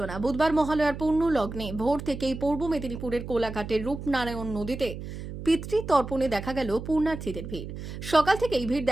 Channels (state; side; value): noise; right; hum, 9 dB below the sound